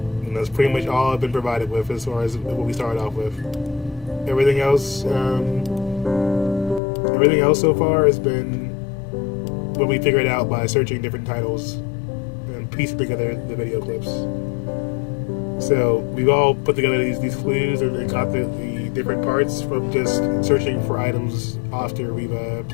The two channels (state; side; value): drops out; right; at 6.8 s